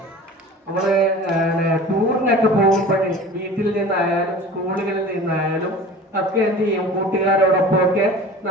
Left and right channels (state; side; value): normal; both; correlation 0.40